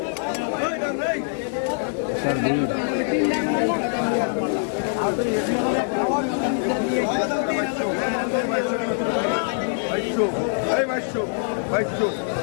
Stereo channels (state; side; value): silent; right; digital silence